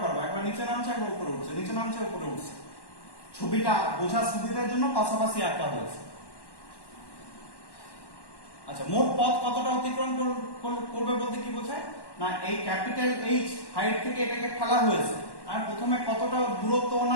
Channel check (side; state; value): right; late; 1.1 ms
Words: পারবে, একবার নিচে নামছে একবার উপরে উঠছে, নিচে নামছে উপরে উঠছে। ছবিটা বোঝার সুবিধার জন্য পাশাপাশি আঁকা হয়েছে। আচ্ছা, মোট পথ কতটা অতিক্রম করবে বলতে কি বোঝায় না, এই ক্যাপিটাল এইচ হাইট থেকে এটাকে ফেলা হয়েছে, আর প্রথমে কতটা দূরত্ব